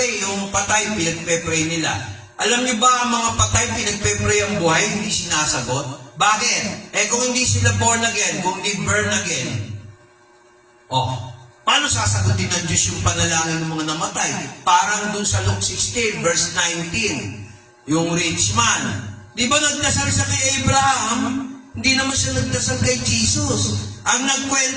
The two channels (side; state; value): both; identical; correlation 1.00